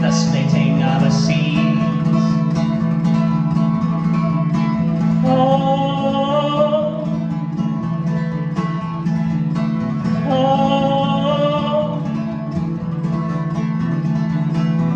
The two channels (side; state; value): both; identical; correlation 1.00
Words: the splitting of a seed. Oh, oh,